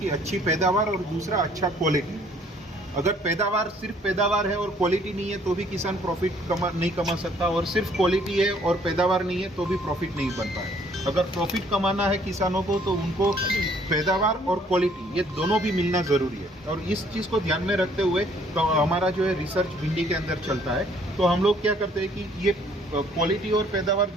अच्छी पैदावार और दूसरा अच्छा क्वालिटी। अगर पैदावार सिर्फ पैदावार है और क्वालिटी नहीं है तो भी किसान प्रॉफिट नहीं कमा सकता, और सिर्फ क्वालिटी है और पैदावार नहीं है तो भी प्रॉफिट नहीं बन पाए। अगर प्रॉफिट कमाना है किसानों को तो उनको पैदावार और क्वालिटी ये दोनों भी मिलना ज़रूरी है। और इस चीज़ को ध्यान में रखते हुए तो हमारा जो है रिसर्च भिंडी के अंदर चलता है। तो हम लोग क्या करते हैं कि ये क्वालिटी और पैदावार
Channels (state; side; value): normal; both; correlation 0.61